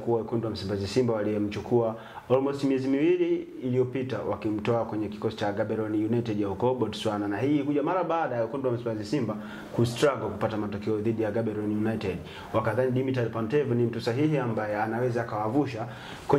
wa wekundu wa Msimbazi Simba waliyemchukua almost miezi miwili iliyopita wakimtoa kwenye kikosi cha Gaborone United ya huko Botswana, na hii kuja mara baada ya wekundu wa Msimbazi Simba kustruggle kupata matokeo dhidi ya Gaborone United. Wakadhani Dimitar Pantev ni mtu sahihi ambaye anaweza akawavusha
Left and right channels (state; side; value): identical; both; correlation 1.00